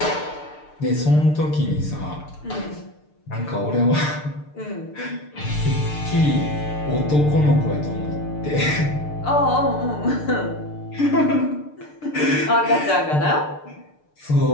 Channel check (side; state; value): right; late; 6.7 ms